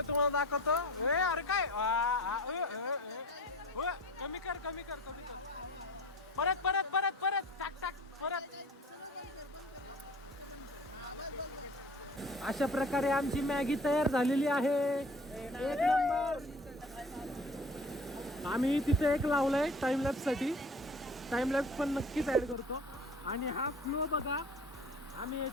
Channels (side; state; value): both; normal; correlation 0.42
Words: तुम्हाला दाखवतो. अरे काय कमी कर कमी कर कमी कर. परत परत परत परत टाक टाक परत. अशा प्रकारे आमची मॅगी तयार झालेली आहे. एक नंबर. आम्ही तिथे एक लावलाय टाइमलॅप्स साठी. टाइमलॅप्स पण नक्कीच ऍड करतो. आणि हा फ्लो बघा, आम्ही